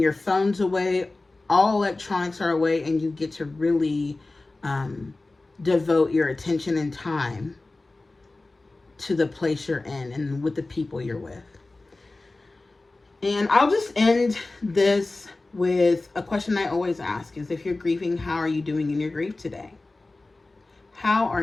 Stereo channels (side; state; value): right; quieter; 3.1 dB